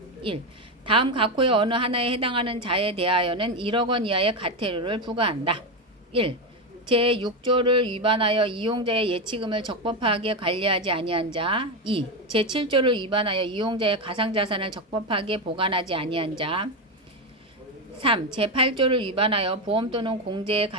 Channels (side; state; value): both; normal; correlation 0.12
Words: 1. 다음 각 호의 어느 하나에 해당하는 자에 대하여는 1억 원 이하의 과태료를 부과한다. 1. 제6조를 위반하여 이용자의 예치금을 적법하게 관리하지 아니한 자. 2. 제7조를 위반하여 이용자의 가상자산을 적법하게 보관하지 아니한 자. 3. 제8조를 위반하여 보험 또는 공제에